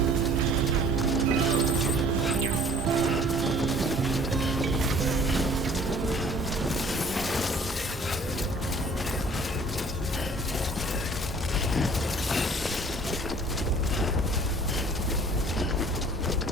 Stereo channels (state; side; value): normal; both; correlation 0.52